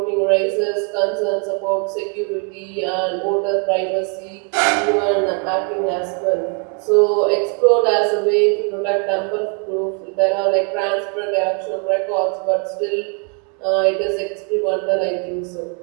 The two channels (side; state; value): left; quieter; 38.3 dB